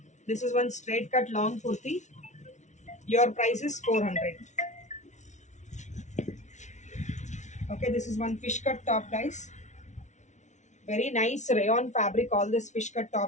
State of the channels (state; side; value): late; right; 0.34 ms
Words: This is one straight cut long kurti. Your price is 400. Okay, this is one fish cut top, guys. Very nice rayon fabric. All this fish cut